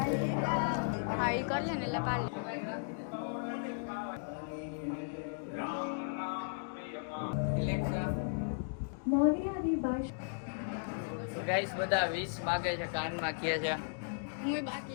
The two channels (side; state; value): right; silent; digital silence